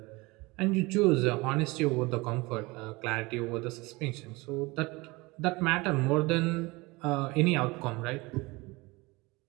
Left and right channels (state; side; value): quieter; left; 23.6 dB